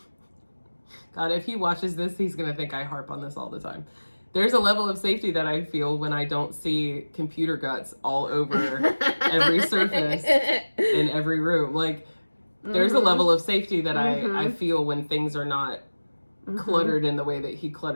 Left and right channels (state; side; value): inverted; both; correlation -1.00